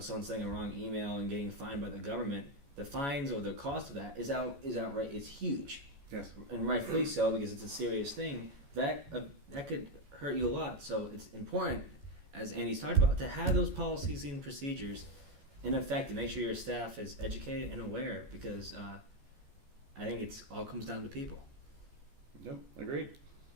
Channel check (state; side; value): late; left; 14 ms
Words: sending a wrong email and getting fined by the government. The fines or the cost of that is outright. It's huge. Yes, and rightfully so, because it's a serious thing that could hurt you a lot. So it's important, as Andy's talked about, to have those policies and procedures in effect to make sure your staff is educated and aware, because I think it's all comes down to people. Yep, agreed.